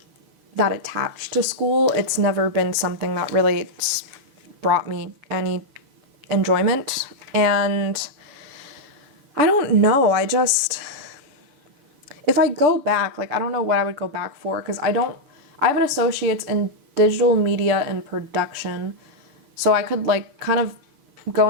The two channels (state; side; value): late; left; 7.1 ms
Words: that attached to school. It's never been something that really brought me any enjoyment, and I don't know, if I go back, like I don't know what I would go back for, because I have an associate's in digital media and production, so I could like kind of go